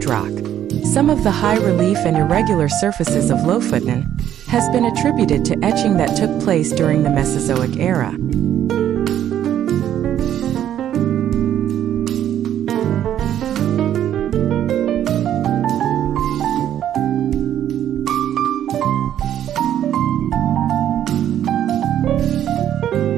Some of the high relief and irregular surfaces of Lofoten has been attributed to etching that took place during the Mesozoic era.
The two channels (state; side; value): quieter; left; 10.8 dB